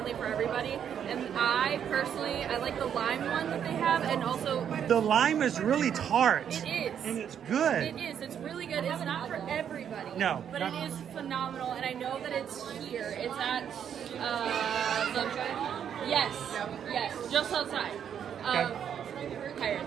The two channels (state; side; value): quieter; left; 8.7 dB